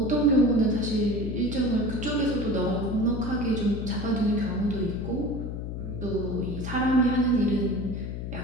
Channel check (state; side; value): noise; left; hum, 6 dB below the sound